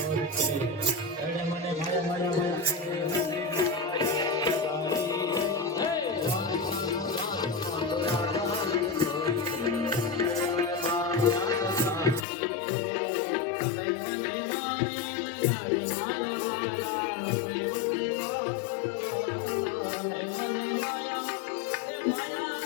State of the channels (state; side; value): drops out; right; at 12.2 s